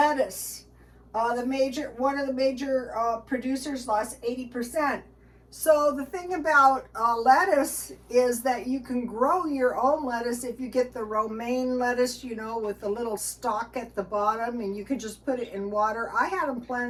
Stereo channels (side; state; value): both; identical; correlation 1.00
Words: one of the major producers lost 80%. So the thing about lettuce is that you can grow your own lettuce if you get the romaine lettuce, you know, with the little stalk at the bottom, and you can just put it in water. I had them